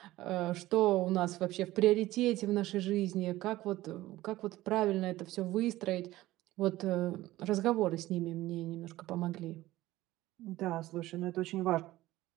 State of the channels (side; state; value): left; quieter; 16.7 dB